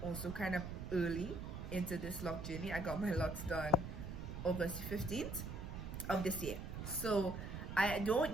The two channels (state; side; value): noise; right; rumble, 6 dB below the sound